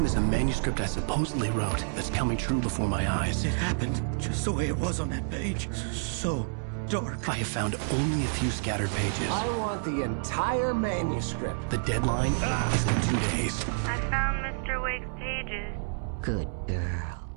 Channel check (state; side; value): silent; left; 59 dB below the other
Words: is a manuscript I supposedly wrote that's coming true before my eyes. It happened just the way it was on that page. So dark. I have found only a few scattered pages. I want the entire manuscript. The deadline is in 2 days. I found Mr. Wake's pages. Good girl.